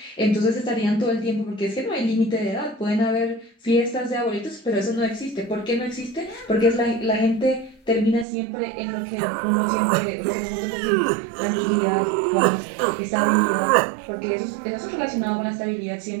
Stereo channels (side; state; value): left; drops out; at 8.2 s